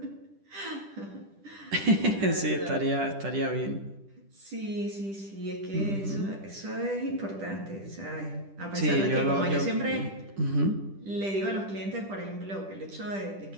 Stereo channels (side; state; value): left; late; 10 ms